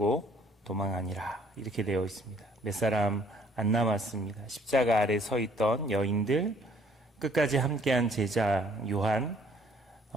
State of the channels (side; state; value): both; normal; correlation 0.60